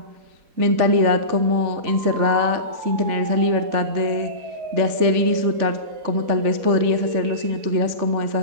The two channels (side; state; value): left; late; 4.1 ms